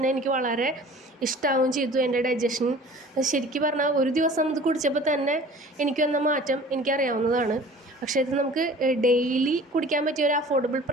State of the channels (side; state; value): both; normal; correlation 0.45